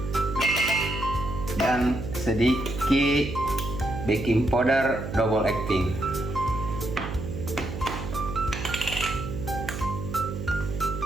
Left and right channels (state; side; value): noise; right; hum, 7 dB below the sound